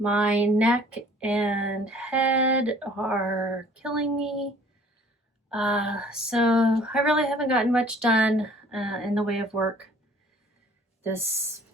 My neck and head are killing me. So I really haven't gotten much done in the way of work since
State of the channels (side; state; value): both; normal; correlation 0.53